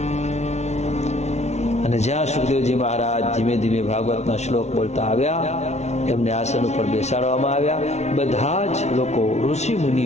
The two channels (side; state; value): right; late; 0.32 ms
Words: અને જ્યાં સુખદેવજી મહારાજ ધીમે ધીમે ભાગવતના શ્લોક બોલતા આવ્યા, એમને આસન ઉપર બેસાડવામાં આવ્યા. બધા જ લોકો ઋષિ